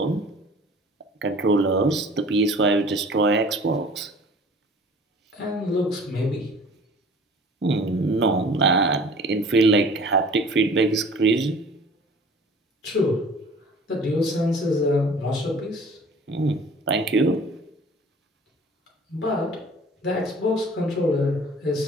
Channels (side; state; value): both; normal; correlation 0.47